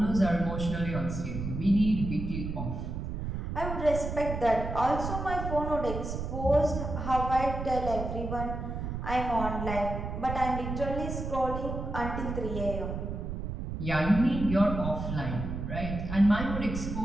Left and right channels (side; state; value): right; noise; rumble, 5 dB below the sound